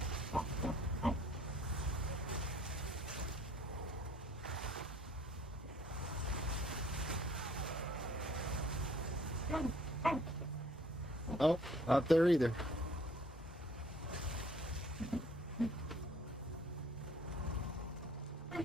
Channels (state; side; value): normal; both; correlation 0.57